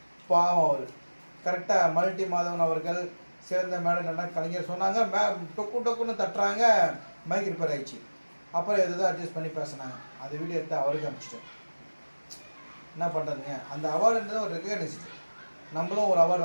பாவம் அவர் கரெக்டாக மல்டி மாதவன் அவர்கள் சிறந்த மேடம் நல்லா கலைஞர் சொன்னாங்க. டொக்குன்னு தட்டுறாங்க. மைக் ரிப்பேர் ஆயிடுச்சு. அப்புறம் எதுவும் அட்ஜஸ்ட் பண்ணி பேசினாங்க. அந்த வீடியோ எடுத்து அவருக்கு அனுப்பிச்சிட்டேன். என்ன பண்ணுறதுங்க அந்த அவார்டுன்றது ஒரு ரெகக்னைஸ்டு. நம்மளும் ஒரு அவார்டு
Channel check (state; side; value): inverted; both; correlation -1.00